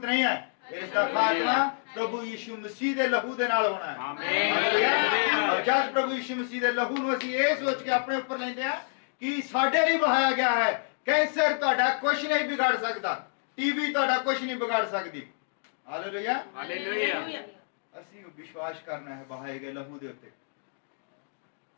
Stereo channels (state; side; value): silent; right; digital silence